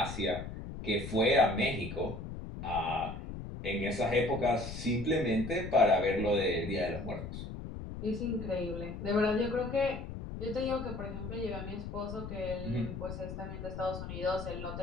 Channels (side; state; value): left; noise; rumble, 8 dB below the sound